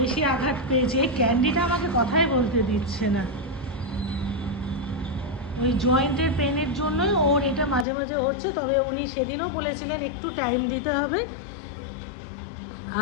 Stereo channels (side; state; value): right; drops out; at 7.9 s